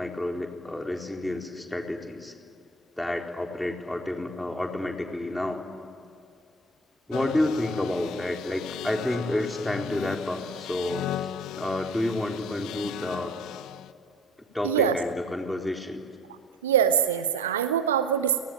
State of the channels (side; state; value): both; normal; correlation 0.43